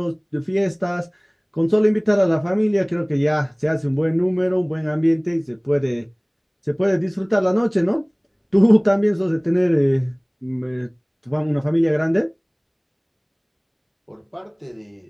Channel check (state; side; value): identical; both; correlation 1.00